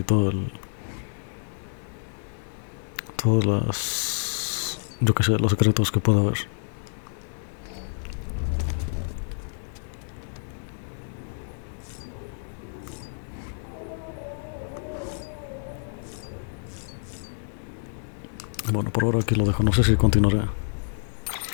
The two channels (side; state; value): right; silent; digital silence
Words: todas las... yo qué sé, los secretos que pueda haber. Bueno, por ahora aquí lo dejo. No sé si continuaré.